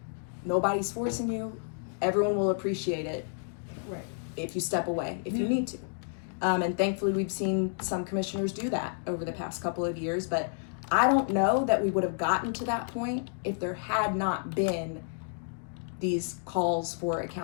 Nobody's forcing you. Everyone will appreciate it. Right. If you step away, if you need to. And thankfully we've seen some commissioners do that over the past couple of years, but I don't know that we would have gotten to that point if there had not been these calls for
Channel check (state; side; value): silent; right; digital silence